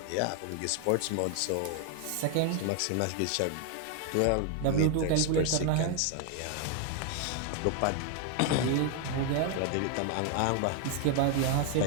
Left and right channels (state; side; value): different; both; correlation 0.00